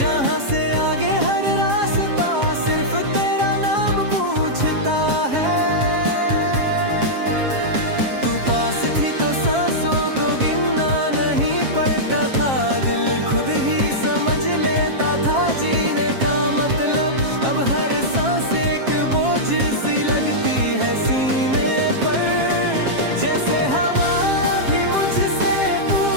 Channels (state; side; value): late; left; 7.5 ms